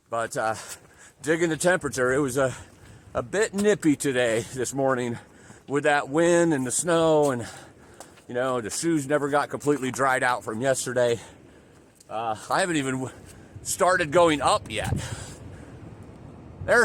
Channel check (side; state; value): both; identical; correlation 1.00